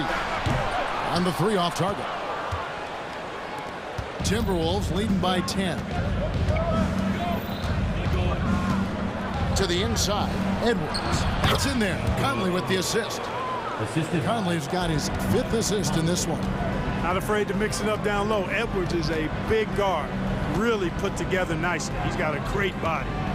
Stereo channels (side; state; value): both; identical; correlation 1.00